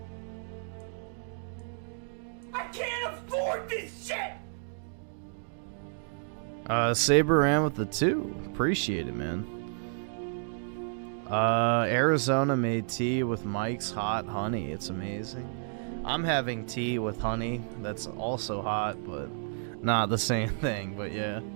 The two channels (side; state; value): left; silent; digital silence